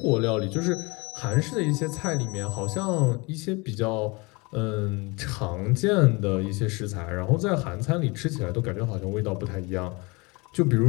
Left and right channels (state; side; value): quieter; right; 26.8 dB